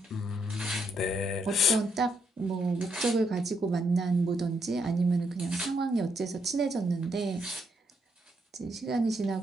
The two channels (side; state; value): both; normal; correlation 0.76